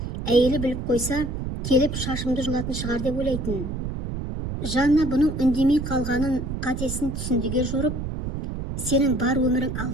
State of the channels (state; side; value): noise; right; rumble, 5 dB below the sound